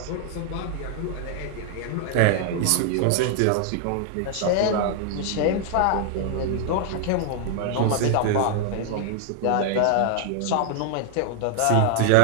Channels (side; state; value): both; different; correlation 0.00